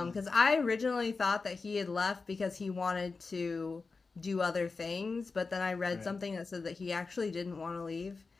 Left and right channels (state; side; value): quieter; right; 4.2 dB